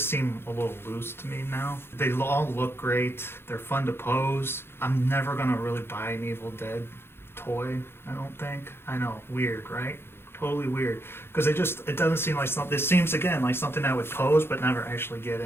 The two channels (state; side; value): late; right; 0.11 ms